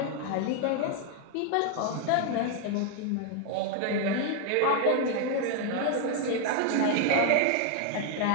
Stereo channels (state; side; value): different; both; correlation 0.00